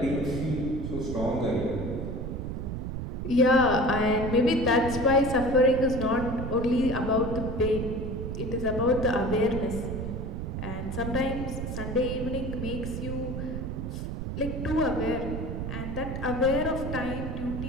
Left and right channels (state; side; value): noise; right; rumble, 4 dB below the sound